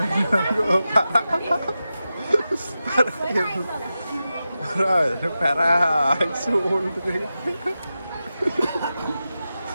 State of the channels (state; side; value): inverted; both; correlation -0.92